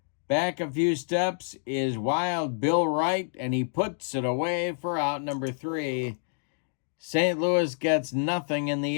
Back a few steps is Wild Bill Wright, and he puts it away for out number 3. St. Louis gets nothing in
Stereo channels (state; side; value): silent; right; digital silence